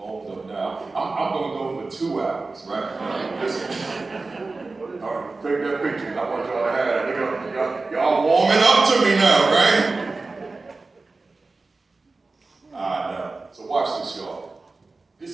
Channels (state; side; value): quieter; left; 3.6 dB